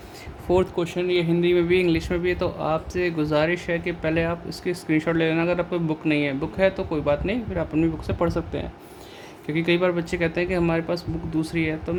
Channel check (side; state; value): both; identical; correlation 1.00